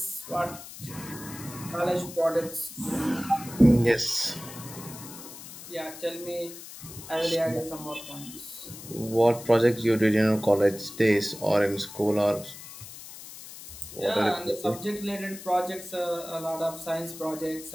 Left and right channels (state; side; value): noise; left; hiss, 14 dB below the sound